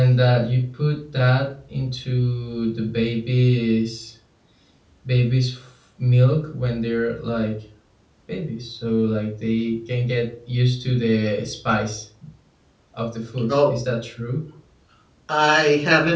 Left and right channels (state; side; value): identical; both; correlation 1.00